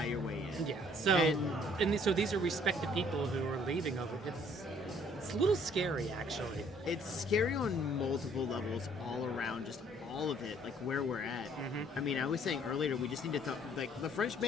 your way in. Yeah. So so these are respected people who are leaving over. It's a little scary, actually. It's scary on multiple levels all around, just all of it, like where we're at. I mean, I was saying earlier, we just need to like, the French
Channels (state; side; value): normal; both; correlation 0.60